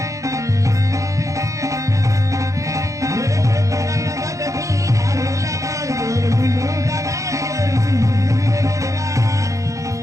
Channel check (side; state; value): left; late; 0.15 ms